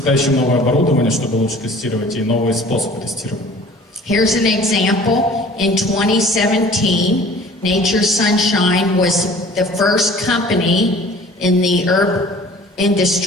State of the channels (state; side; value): normal; both; correlation 0.48